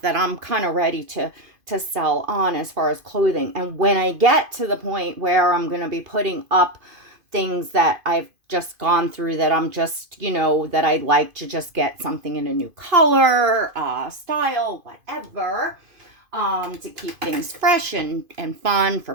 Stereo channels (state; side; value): late; left; 2.5 ms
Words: that I'm kind of ready to sell on as far as clothing. And when I get to the point where I'm going to be putting up things that I've just gone through, that I'm just, that I'd like to just get something in a new color, style, whatever, to keep things fresh and fun for